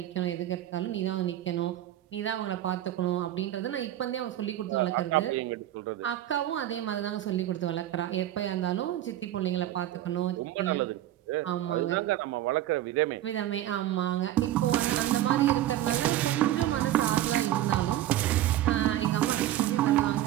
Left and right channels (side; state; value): left; quieter; 13.3 dB